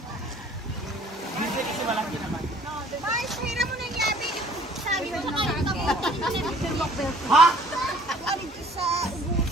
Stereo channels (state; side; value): normal; both; correlation 0.55